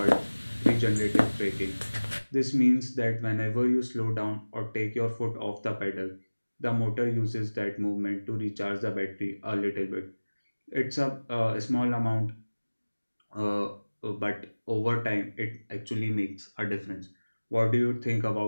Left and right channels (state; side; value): inverted; both; correlation -1.00